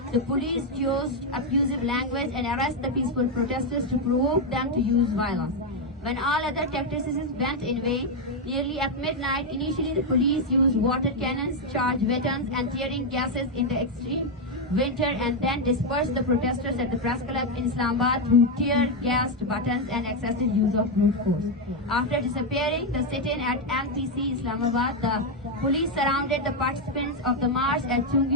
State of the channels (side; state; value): both; normal; correlation 0.03